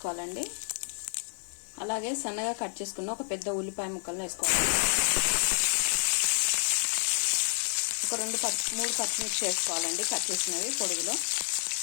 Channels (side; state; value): right; silent; 58 dB below the other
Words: అలాగే సన్నగా కట్ చేసుకున్న ఒక పెద్ద ఉల్లిపాయ ముక్కలను వేసుకోవాలి. ఒక 3 పచ్చిమిర్చి వేసుకోవాలండి, కట్ చేసినవి పొడుగులో.